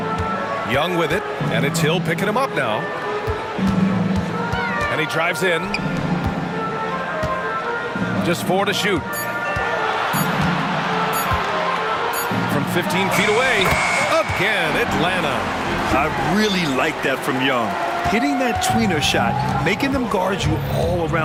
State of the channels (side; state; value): both; identical; correlation 1.00